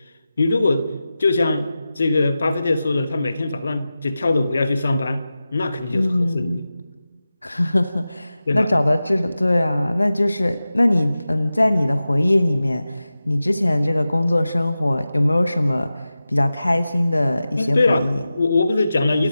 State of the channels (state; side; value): inverted; both; correlation -0.94